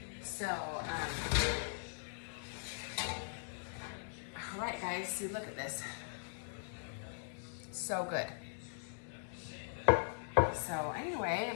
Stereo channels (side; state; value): right; silent; digital silence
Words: So, all right guys, see, look at this. So good. So anyway,